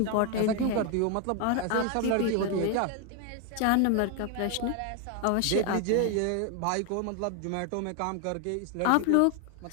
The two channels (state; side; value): different; both; correlation 0.01